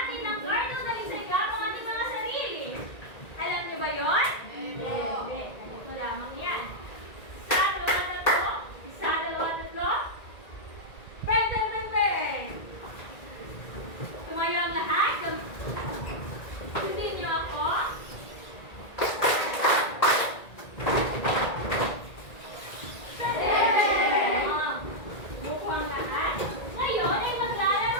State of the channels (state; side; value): late; right; 1.9 ms